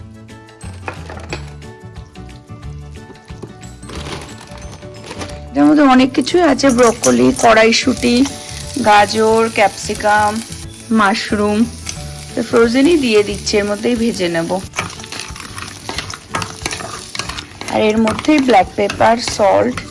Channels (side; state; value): both; identical; correlation 1.00